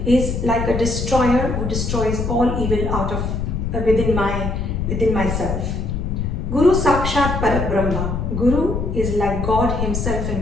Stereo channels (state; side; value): noise; left; rumble, 2 dB below the sound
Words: is like a destroyer who destroys all evil out of within myself. Guru Sakshat Parabrahma. Guru is like God himself